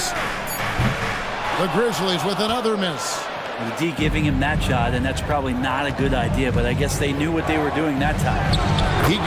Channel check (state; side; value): identical; both; correlation 1.00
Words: The Grizzlies with another miss. The D giving him that shot, and that's probably not a good idea, but I guess they knew what they were doing that time. He